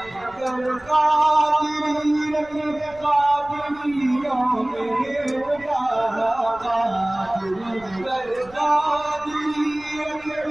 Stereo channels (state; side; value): noise; right; rumble, 24 dB below the sound